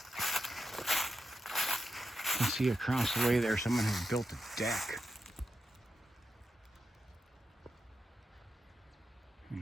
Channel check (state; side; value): normal; both; correlation 0.87